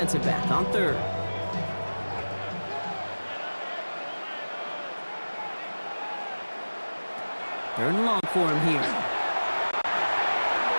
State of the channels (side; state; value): both; inverted; correlation -1.00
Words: back on 3rd. Third and long for him here.